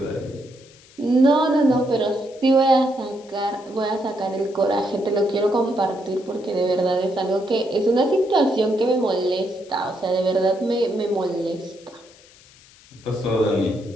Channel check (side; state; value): left; noise; hiss, 25 dB below the sound